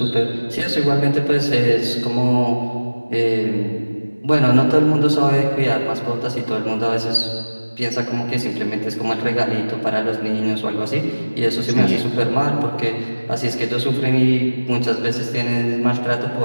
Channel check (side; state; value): both; inverted; correlation -1.00